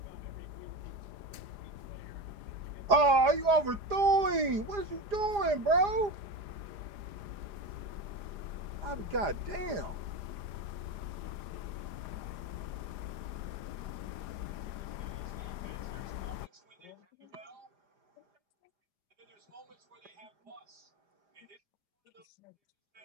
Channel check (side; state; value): left; late; 4.9 ms